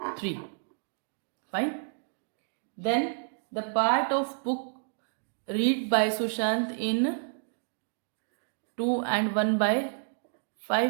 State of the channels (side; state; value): left; silent; digital silence